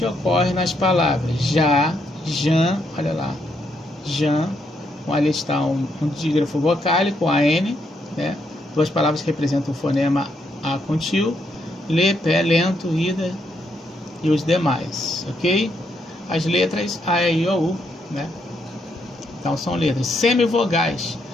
ocorre nas palavras já, jan, olha lá, jan, ali está um dígrafo vocálico, AN, né? Duas palavras que representam o fonema A com tio, lê, pé, lento, ida e os demais, ok? As letras A, E, I, O, U, né? Então são letras. Semivogais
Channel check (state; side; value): normal; both; correlation 0.77